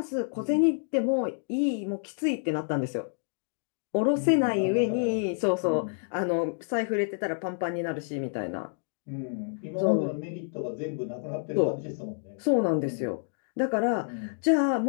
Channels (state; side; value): silent; right; digital silence